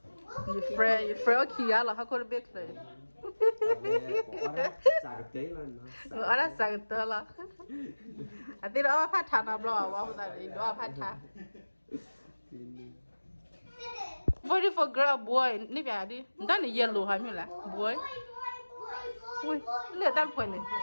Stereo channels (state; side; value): inverted; both; correlation -1.00